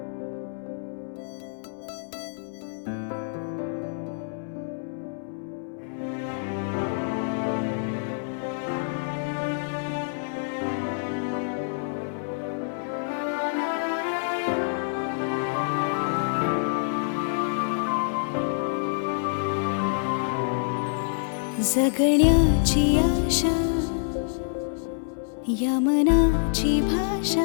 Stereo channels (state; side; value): silent; right; 60 dB below the other